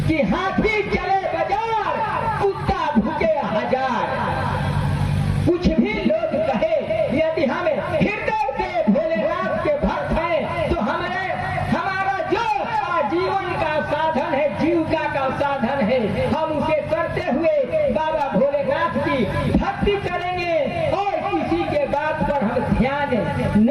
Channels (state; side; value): identical; both; correlation 1.00